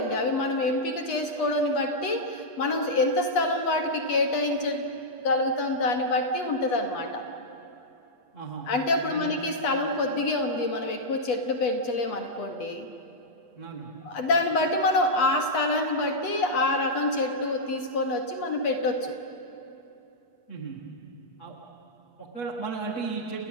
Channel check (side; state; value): right; late; 8.3 ms